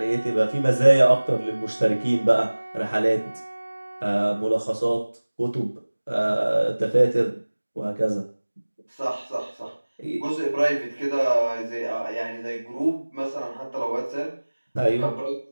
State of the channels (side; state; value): both; inverted; correlation -1.00